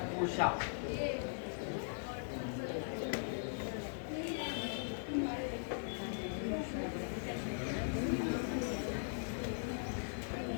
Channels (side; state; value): right; silent; digital silence